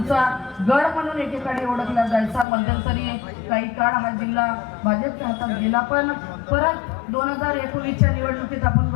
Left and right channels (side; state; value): right; drops out; at 2.5 s